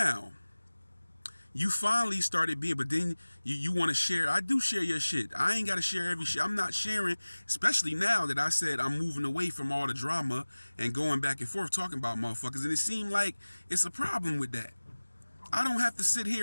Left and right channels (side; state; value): both; inverted; correlation -1.00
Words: you finally started being, but then you want to share. I do share your shit. I ain't got to share every shit. I'm not sharing, especially now that I said I'm moving away from all the drama and going back and forth talking about motherfuckers. And it seemed like it's a problem with that. I don't have to sit